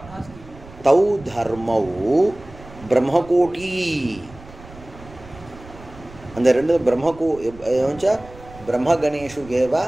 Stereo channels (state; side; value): noise; right; rumble, 19 dB below the sound